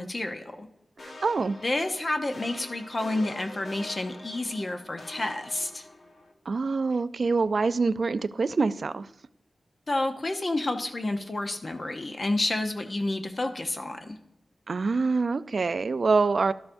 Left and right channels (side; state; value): both; normal; correlation 0.94